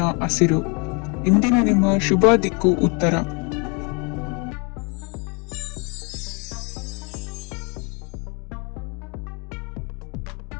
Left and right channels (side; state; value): right; quieter; 33.2 dB